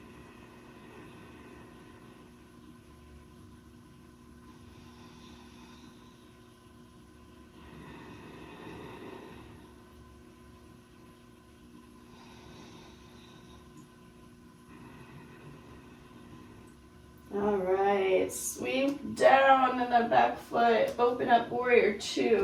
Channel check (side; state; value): both; identical; correlation 1.00